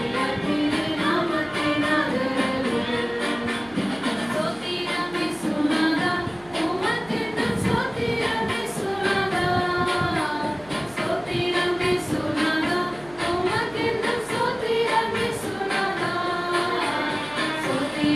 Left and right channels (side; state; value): right; noise; hum, 24 dB below the sound